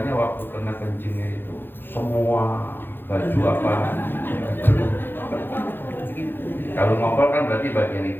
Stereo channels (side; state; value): right; late; 0.10 ms